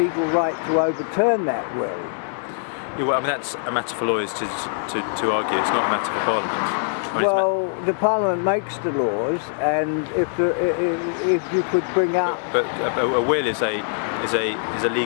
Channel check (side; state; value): right; silent; digital silence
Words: right to overturn that will. Yeah, well, I mean, that's a matter for lawyers to argue. It's not a matter for Parliament. I mean, the Parliament makes the laws, and if you could bring up, but a will is a